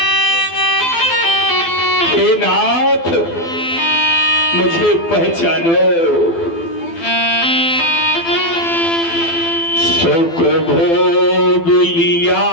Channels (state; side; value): late; right; 12 ms